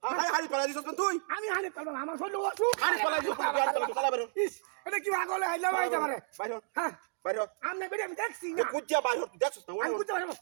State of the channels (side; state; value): left; silent; digital silence